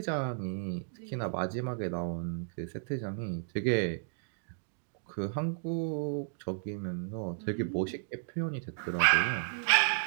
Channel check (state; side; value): silent; left; digital silence